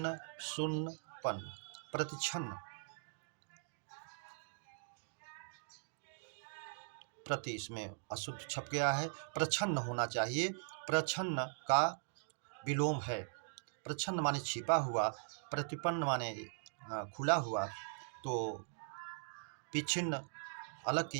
शून्य, पन्न। प्रतिच्छन्न, प्रति इसमें अशुद्ध छप गया है, प्रच्छन्न होना चाहिए। प्रच्छन्न का विलोम है, प्रच्छन्न माने छिपा हुआ, प्रतिपन्न माने खुला हुआ, तो विच्छिन्न अलग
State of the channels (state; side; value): silent; left; digital silence